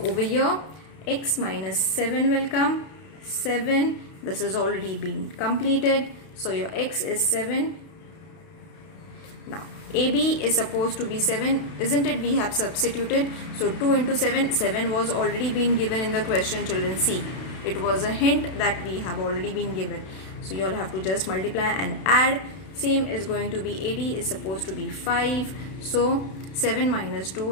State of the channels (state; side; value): late; right; 32 ms